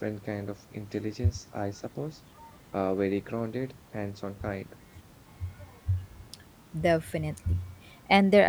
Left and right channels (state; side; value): identical; both; correlation 1.00